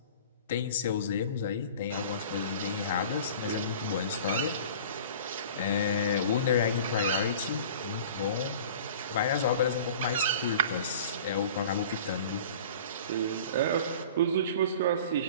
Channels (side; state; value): both; inverted; correlation -0.42